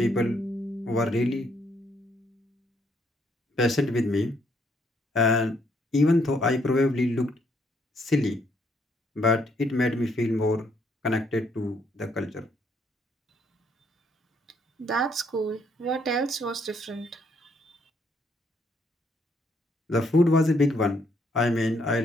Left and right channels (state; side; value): normal; both; correlation 0.71